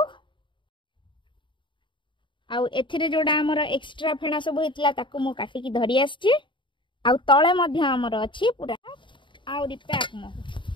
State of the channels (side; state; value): right; late; 0.23 ms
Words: आउ एथिरे जोडा हमर एक्स्ट्रा फेणा सब हेतला ताको मो काटी की धरि आछि आउ तळे मध्य हमर अछि पूरा आउरी पैक महू